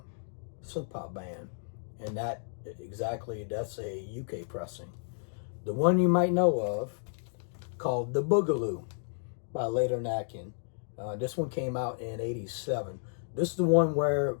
synth pop band, and that's a UK pressing. The one you might know of, called The Boogaloo by Later Neckin. This one came out in '87. This is the one where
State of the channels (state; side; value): silent; right; digital silence